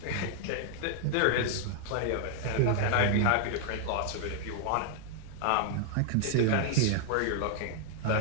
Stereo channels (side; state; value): both; different; correlation 0.00